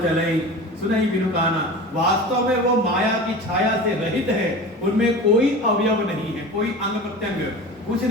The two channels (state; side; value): normal; both; correlation 0.34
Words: चलई सुनई बिनु काना। वास्तव में वो माया की छाया से रहित है, उनमें कोई अवयव नहीं है, कोई अंग प्रत्यंग कुछ